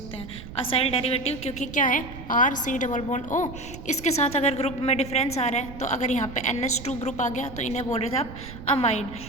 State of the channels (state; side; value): noise; right; rumble, 13 dB below the sound